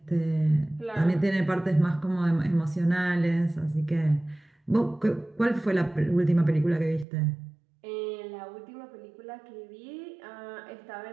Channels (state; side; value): drops out; left; at 7.1 s